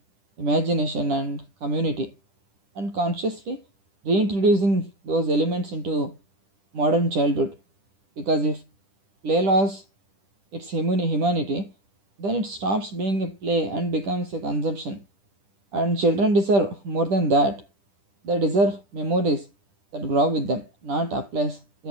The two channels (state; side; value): late; left; 10 ms